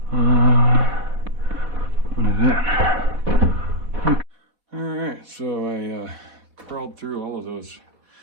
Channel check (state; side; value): late; left; 4.1 ms